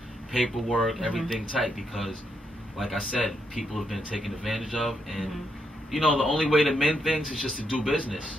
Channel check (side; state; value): both; normal; correlation 0.79